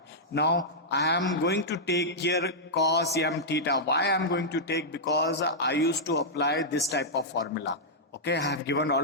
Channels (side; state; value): both; normal; correlation -0.09